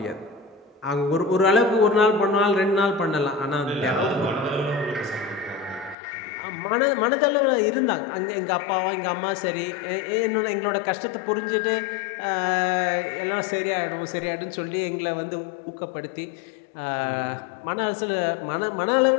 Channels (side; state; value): right; drops out; at 6.0 s